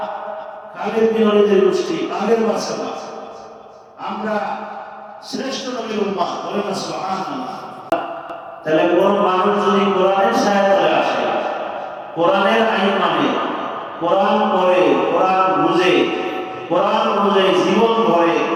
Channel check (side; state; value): both; identical; correlation 1.00